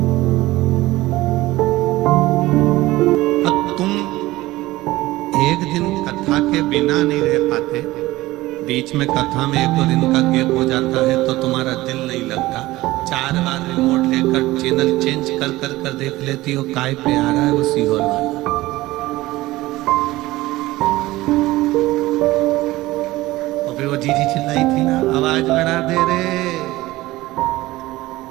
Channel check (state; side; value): quieter; left; 18.1 dB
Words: बिना नहीं रह पाते, बीच में कथा में 1-2 दिन का गैप हो जाता है तो तुम्हारा दिल नहीं लगता। 4 बार रिमोट लेकर चैनल चेंज कर कर कर देख लेती हो, काय पे आ रहा है वो सीहोर वाला। और फिर वो जीजी चिल्लाई थी ना, आवाज बढ़ा दे रे,